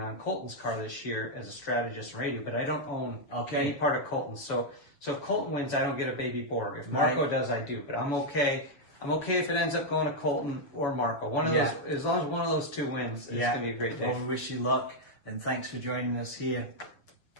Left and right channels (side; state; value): right; late; 6.9 ms